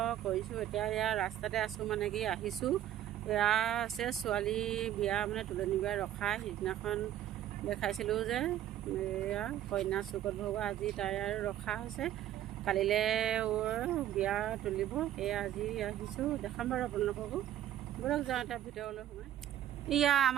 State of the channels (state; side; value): quieter; left; 11.9 dB